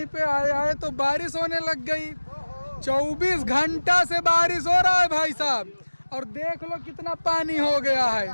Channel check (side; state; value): both; inverted; correlation -1.00